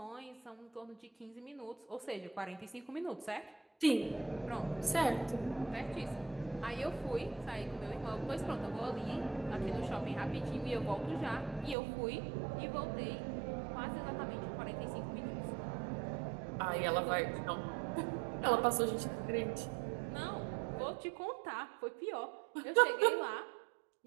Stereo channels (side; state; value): left; drops out; at 11.8 s